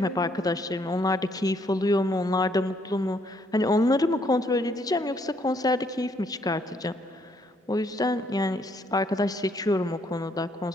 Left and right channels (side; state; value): both; normal; correlation 0.69